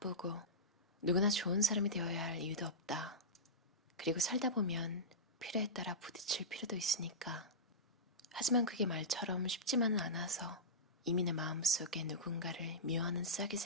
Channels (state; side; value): normal; both; correlation -0.15